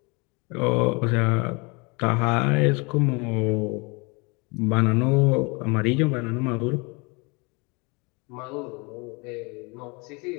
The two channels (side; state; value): right; quieter; 29.2 dB